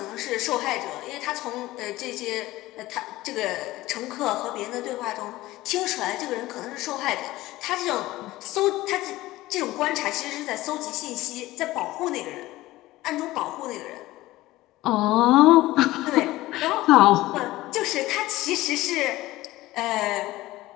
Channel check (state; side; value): quieter; right; 17.6 dB